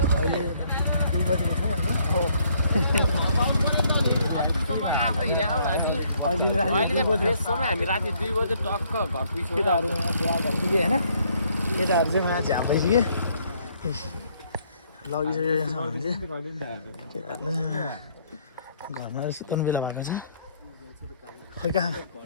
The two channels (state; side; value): inverted; both; correlation -0.67